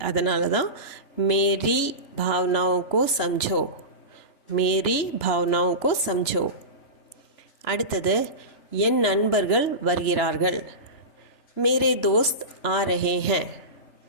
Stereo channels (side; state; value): right; late; 3.0 ms